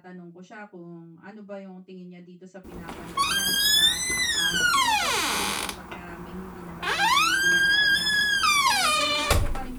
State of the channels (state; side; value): identical; both; correlation 1.00